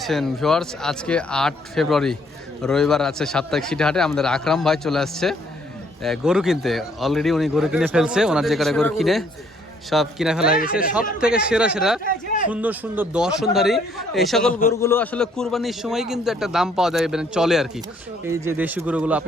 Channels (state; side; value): normal; both; correlation 0.65